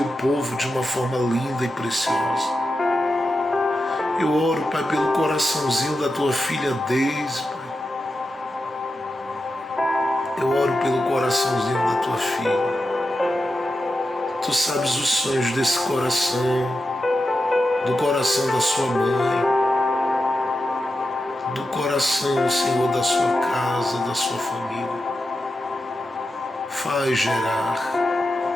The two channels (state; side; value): normal; both; correlation 0.89